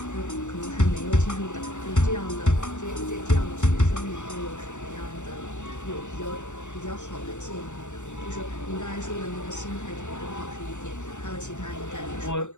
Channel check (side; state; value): right; late; 0.84 ms